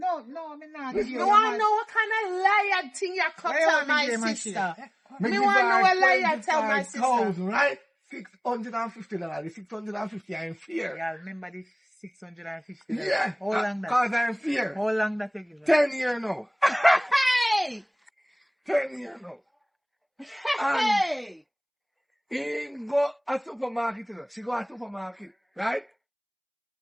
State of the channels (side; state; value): both; identical; correlation 1.00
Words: me not. Listen, Me You want to know what kind of liar thing you cut Why you tell want me my give my sister. shit? me Me give want to her know what liar tell my sister. 25,000, right? $650. The 650 I'm in fear. Yeah, remember the 650. Yeah, How long that? cause I'm in fear. How long that you give her? 10 years now. Hey! 10 years now. And Hey! he go a supermarket, you know. She go a supermarket, right?